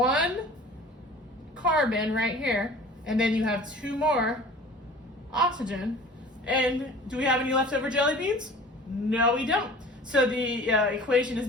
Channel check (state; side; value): normal; both; correlation 0.44